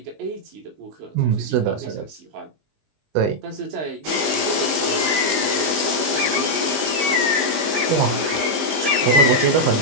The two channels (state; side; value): late; left; 20 ms